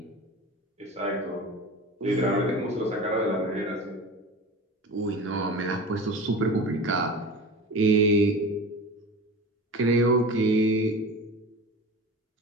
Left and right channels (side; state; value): both; normal; correlation 0.34